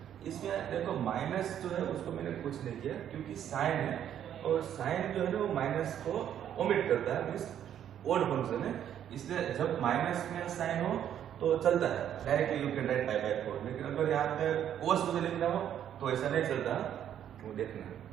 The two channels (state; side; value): quieter; left; 10.0 dB